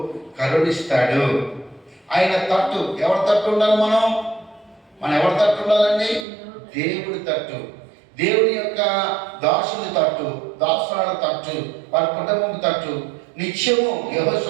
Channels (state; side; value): drops out; left; at 6.2 s